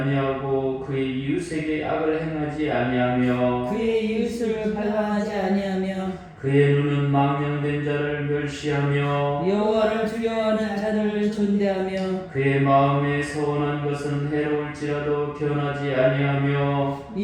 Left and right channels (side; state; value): both; identical; correlation 1.00